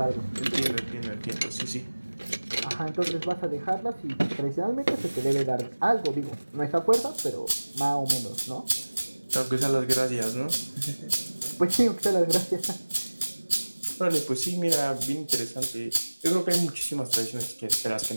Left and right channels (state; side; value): inverted; both; correlation -1.00